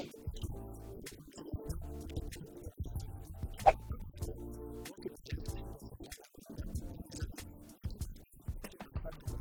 de personnes. Mais avant de commencer la vidéo, pour toute personne qui tomberait sur cette vidéo et qui ne me connaissent pas, moi c'est pas Jess, je suis une personne random lambda comme vous les amis, mais qui partage tout son lifestyle sur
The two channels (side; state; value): both; identical; correlation 1.00